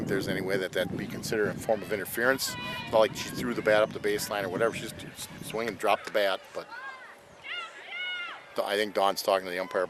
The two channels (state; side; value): identical; both; correlation 1.00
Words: there's any way that that'd be considered a form of interference. It's not like she threw the bat up the baseline or whatever. She just swing and drop the bat. But I think Don's talking to the umpire